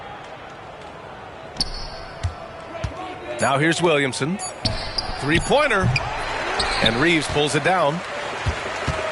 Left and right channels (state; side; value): identical; both; correlation 1.00